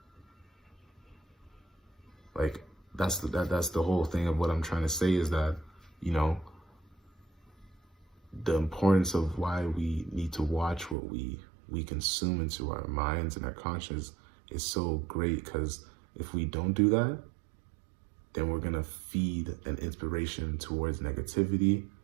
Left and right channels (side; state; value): left; drops out; at 11.0 s